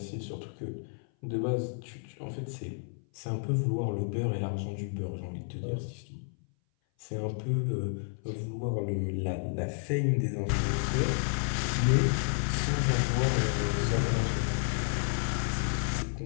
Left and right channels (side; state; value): right; silent; 57 dB below the other